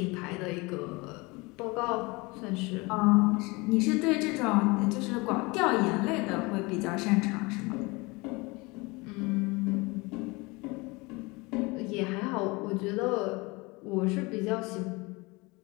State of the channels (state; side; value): quieter; right; 25.1 dB